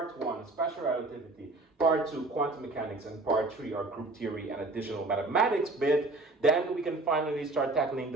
1, special relativity, part 2, quantum mechanics, and part 3, our group theory and additional mathematics bit, then we can finally start tackling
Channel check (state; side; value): quieter; left; 3.0 dB